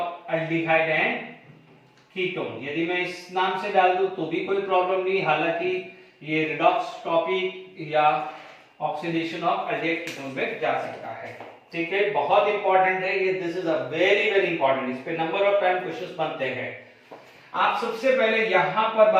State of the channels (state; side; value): identical; both; correlation 1.00